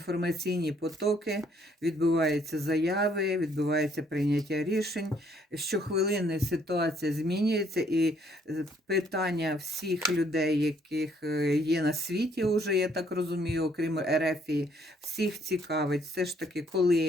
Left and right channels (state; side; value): normal; both; correlation 0.66